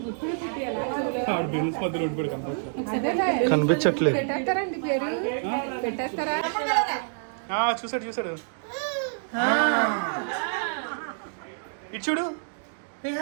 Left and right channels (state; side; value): silent; left; digital silence